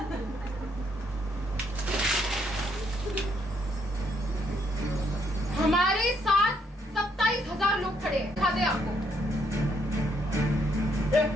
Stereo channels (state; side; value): normal; both; correlation 0.72